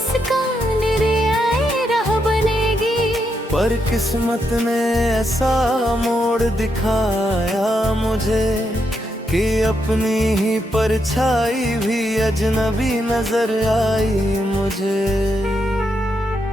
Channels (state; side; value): normal; both; correlation 0.81